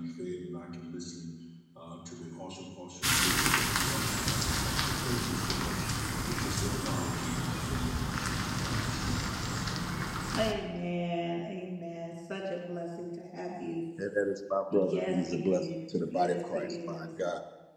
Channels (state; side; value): identical; both; correlation 1.00